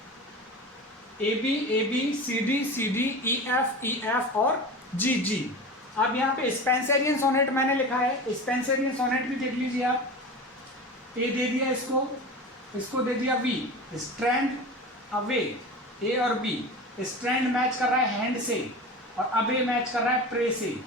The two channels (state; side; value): normal; both; correlation 0.31